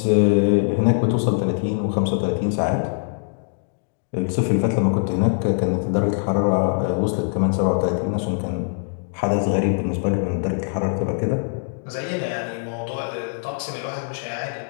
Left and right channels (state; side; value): silent; right; digital silence